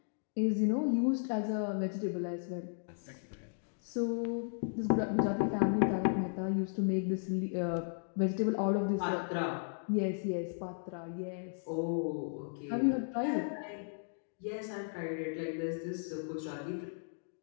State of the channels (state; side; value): silent; right; digital silence